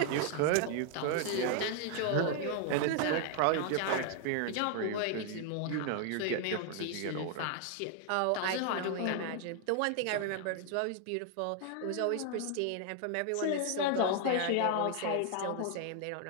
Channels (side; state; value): both; different; correlation 0.00